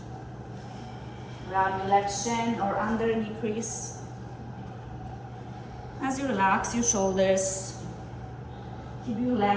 Grab your left shin or under knee crease. As you relax your shoulders, keep your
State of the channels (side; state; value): both; identical; correlation 1.00